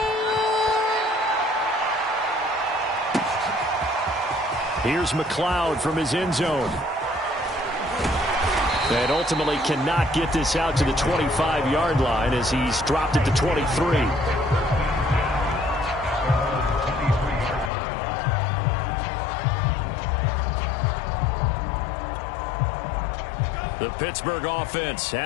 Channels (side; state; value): right; drops out; at 17.7 s